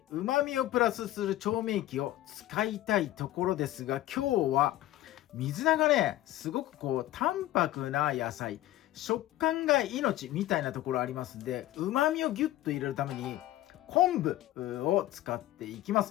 旨味をプラスする調味液を使いたいところですが、今日は水菜がね、すごく淡白な野菜、食感が命みたいなところありますんで、旨味をギュッと入れるために昆布を使っていきま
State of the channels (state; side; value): quieter; right; 14.8 dB